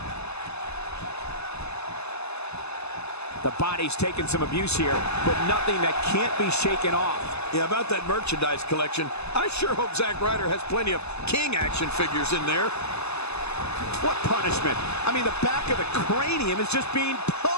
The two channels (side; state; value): right; late; 0.80 ms